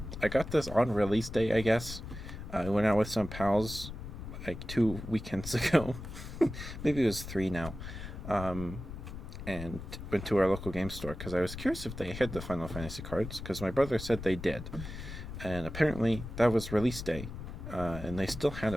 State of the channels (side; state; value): left; noise; rumble, 9 dB below the sound